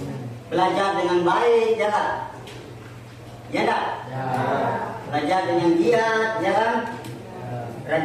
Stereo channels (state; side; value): identical; both; correlation 1.00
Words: Belajar dengan baik, ya kan? Ya enggak? Belajar dengan giat, ya kan?